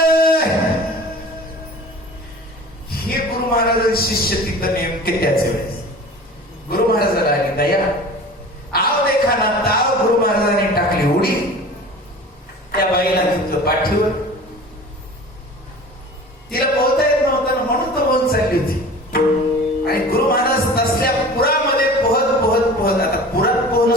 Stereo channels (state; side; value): normal; both; correlation 0.40